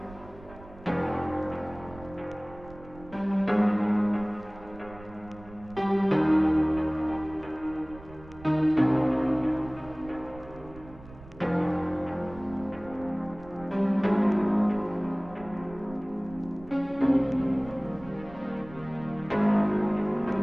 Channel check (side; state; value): right; noise; rumble, 19 dB below the sound